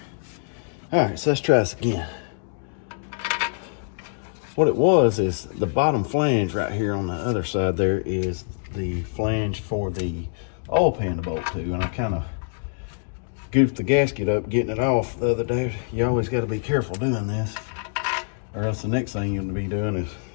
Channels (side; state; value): right; silent; digital silence